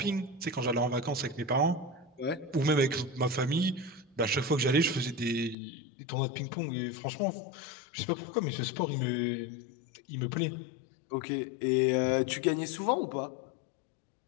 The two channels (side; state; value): right; drops out; at 5.6 s